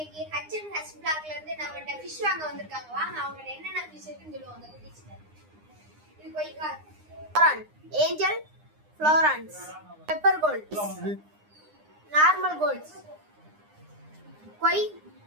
H&H vlogல இருந்து நம்மகிட்ட ஃபிஷ் வாங்க வந்திருக்காங்க. வாங்க அவங்க என்னென்ன ஃபிஷ் இருக்குன்னு சொல்லுவாங்க. இது koi carp, flowerhorn, angel, flowerhorns, pepper gold, normal golds, koi,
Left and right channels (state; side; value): late; left; 9.8 ms